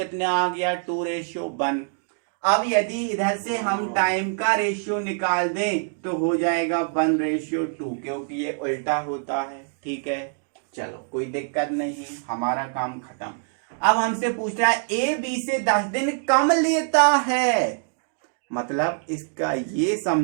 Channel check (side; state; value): left; silent; 62 dB below the other